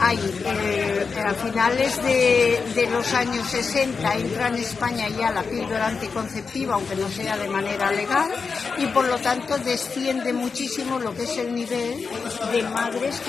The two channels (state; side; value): quieter; right; 5.0 dB